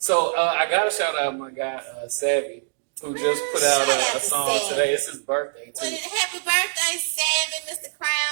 So I gotta shout out my guy Savvy, who just put out Shout out a to song Savvy. today. It's his birthday Well, too, happy birthday, Savvy, Mr.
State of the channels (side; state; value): left; silent; digital silence